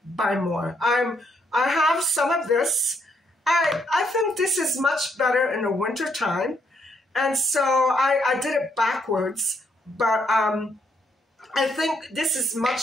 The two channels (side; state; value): both; normal; correlation 0.73